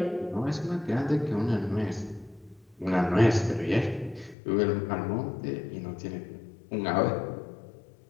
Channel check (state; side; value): drops out; right; at 4.4 s